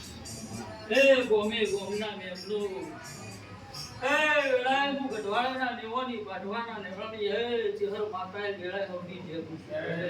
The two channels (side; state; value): both; identical; correlation 1.00